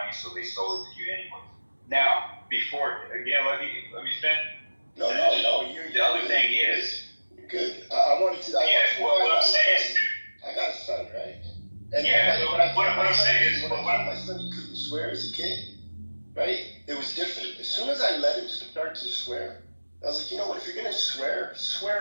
so they sold it to you anyway. Now, before again, let me finish. No. The other thing is. Good. I wanted to. What I'm saying is, I got a son, right? And what I'm saying is, when I told my son he couldn't swear as a kid, right? It was different. As soon as I let him start to swear, I was like, you know what? If you're gonna swear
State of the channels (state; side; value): inverted; both; correlation -1.00